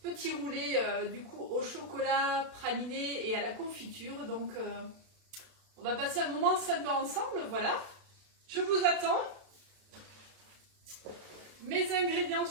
roulés du coup au chocolat praliné et à la confiture. Donc on va passer un moment sympa ensemble, voilà. Je vous attends. Mes ingrédients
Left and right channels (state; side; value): late; left; 32 ms